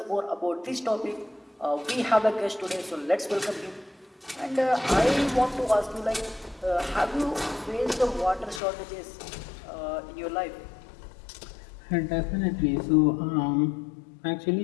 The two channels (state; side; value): drops out; right; at 8.6 s